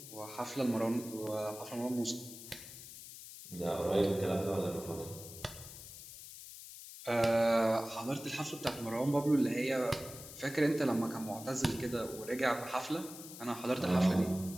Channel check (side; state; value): left; noise; hiss, 14 dB below the sound